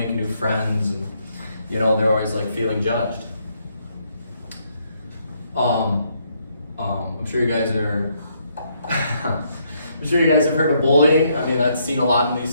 new friends, and they're always feeling judged. I'm sure you guys are I'm sure you guys have heard of bullying. I mean, that's seen a lot in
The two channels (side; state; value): both; inverted; correlation -0.73